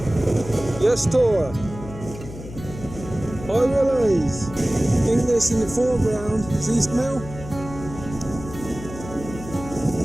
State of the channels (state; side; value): noise; left; hum, 13 dB below the sound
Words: Yes, Tor. Hi, Willies. I think this in the foreground is East Mill.